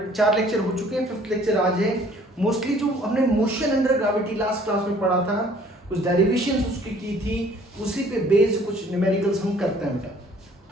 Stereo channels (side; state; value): both; normal; correlation 0.56